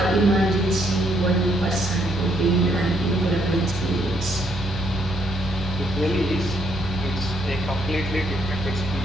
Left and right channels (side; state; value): left; noise; rumble, 16 dB below the sound